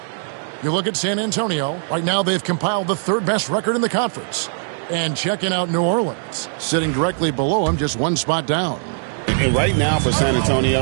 You look at San Antonio. Right now they've compiled the 3rd best record in the conference. And checking out New Orleans, sitting directly below them, just 1 spot down. And right now for San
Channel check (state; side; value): silent; left; digital silence